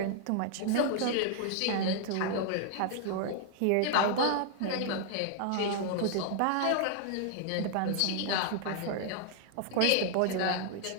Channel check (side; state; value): both; different; correlation 0.00